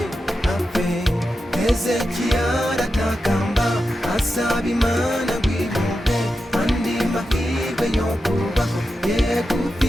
Hezekiya aratakamba asaba Imana ngo imuhe andi mahirwe yo kubaho yegufi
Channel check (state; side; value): normal; both; correlation 0.90